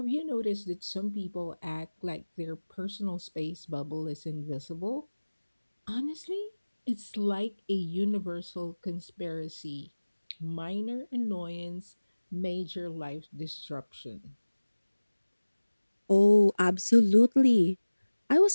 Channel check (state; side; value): inverted; both; correlation -1.00